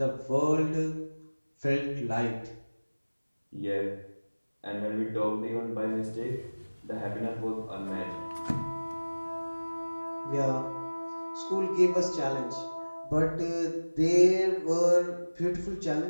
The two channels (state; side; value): inverted; both; correlation -1.00